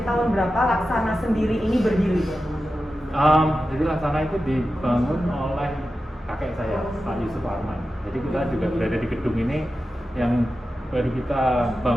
tahun berapa Laksana sendiri ini berdiri? Jadi Laksana itu dibangun oleh kakek saya, Pak Yusuf Arman. Jadi kita juga berada di gedung ini yang baru kita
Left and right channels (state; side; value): normal; both; correlation 0.92